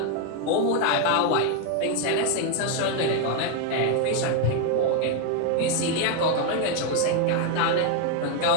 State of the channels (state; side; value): different; both; correlation 0.01